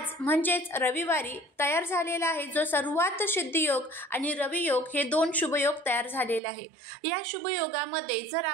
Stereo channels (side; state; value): left; drops out; at 6.4 s